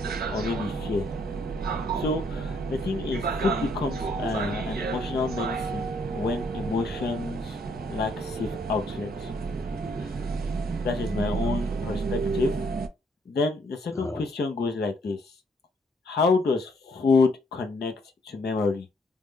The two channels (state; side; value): normal; both; correlation 0.68